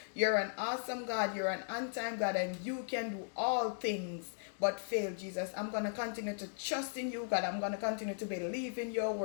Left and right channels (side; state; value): right; silent; digital silence